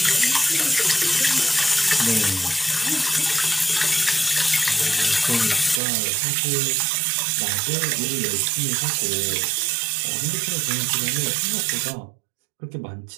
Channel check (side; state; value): left; drops out; at 5.8 s